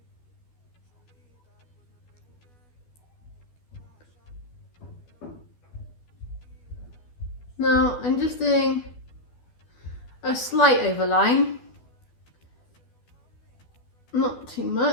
Now I'm just doing a slight overline, not too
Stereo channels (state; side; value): late; right; 12 ms